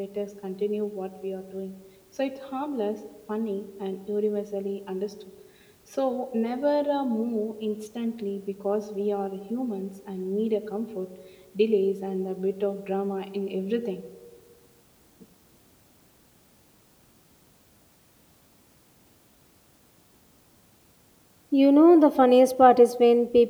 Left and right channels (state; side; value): identical; both; correlation 1.00